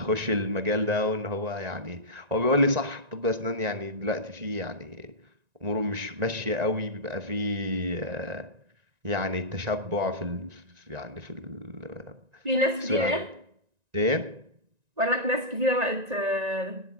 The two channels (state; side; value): late; left; 1.9 ms